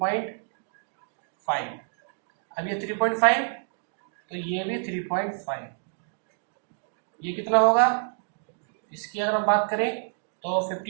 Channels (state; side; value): silent; left; digital silence